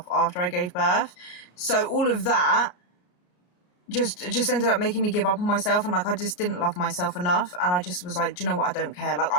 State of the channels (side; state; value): right; late; 33 ms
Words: after I gave birth. So all of that just ended up making me give up on myself, and like I just didn't love myself enough, and I just was like, do you know what, I don't care. Like